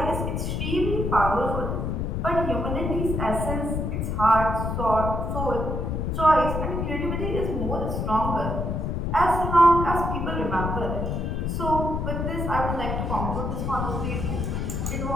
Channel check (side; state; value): left; noise; rumble, 1 dB below the sound